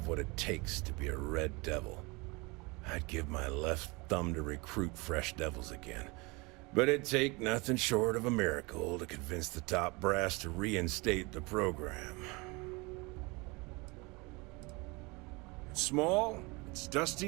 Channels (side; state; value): left; quieter; 26.3 dB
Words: what it takes to be a Red Devil. I'd give my left thumb to recruit fresh devils again, but it'd take nothing short of a miracle to convince the top brass to reinstate the program. It's small, it's